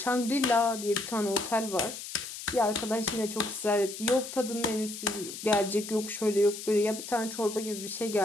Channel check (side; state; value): left; noise; hiss, 10 dB below the sound